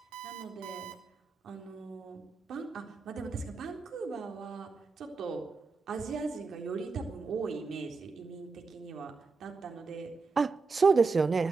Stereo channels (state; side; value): quieter; left; 4.3 dB